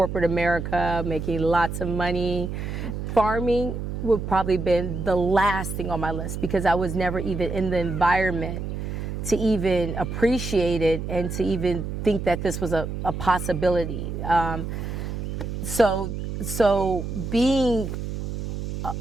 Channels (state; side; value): noise; right; hum, 5 dB below the sound